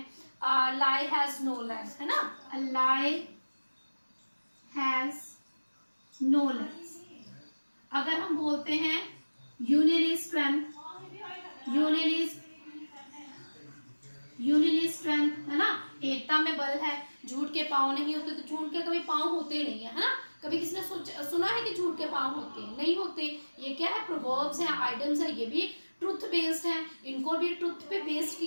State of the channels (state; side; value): inverted; both; correlation -1.00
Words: लाई हैज नो लेग्स, है ना, लाई हैज नो लेग्स। अगर हम बोलते हैं union is strength, union is strength, है ना, एकता में बल है, झूठ के पांव नहीं होते, तो झूठ के कभी पांव होते नहीं है ना, कभी किसी ने सुना है कि झूठ के पाँव होते हैं? नहीं होते। ये क्या है? प्रोवर्ब्स हैं, आइडम्स है, ये भी ट्रुथ बेस्ड है, इनको भी ट्रुथ पे बेस्ड